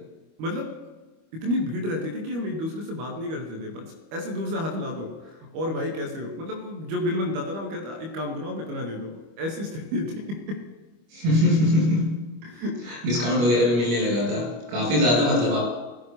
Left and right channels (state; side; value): late; left; 25 ms